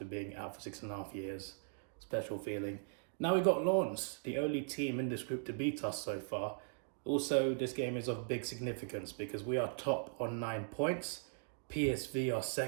being out for 6.5 years. Special feeling. Now we got Lens, the only team in this group to beat us so far. Also, this game is of big significance because we are top on 9 points. PSV are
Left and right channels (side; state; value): left; silent; digital silence